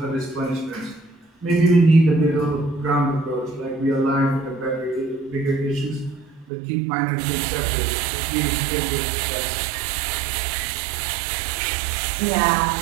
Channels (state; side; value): drops out; left; at 6.5 s